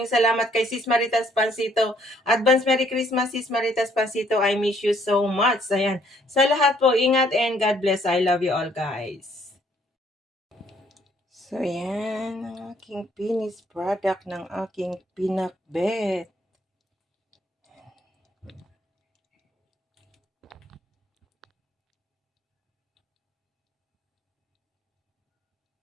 salamat. Kay Sis Maritas Pansito, advance Merry Christmas, Sis Maritas Pansito. I miss you so much. Ayan, sa lahat po, ingat and God bless. I love you all, guys. So, yan ang aking finished product ng aking pinakbet.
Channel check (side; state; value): both; normal; correlation 0.65